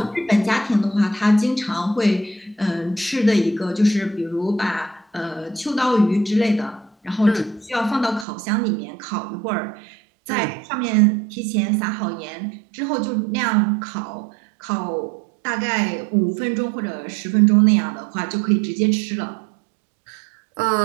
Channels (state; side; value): drops out; left; at 8.2 s